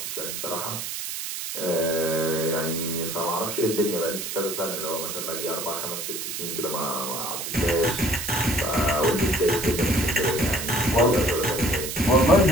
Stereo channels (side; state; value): right; noise; hiss, 5 dB below the sound